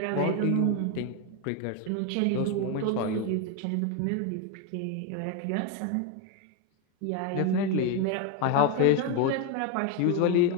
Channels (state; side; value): different; both; correlation 0.01